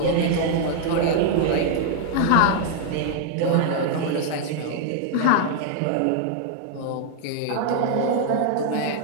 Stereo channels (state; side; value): different; both; correlation 0.00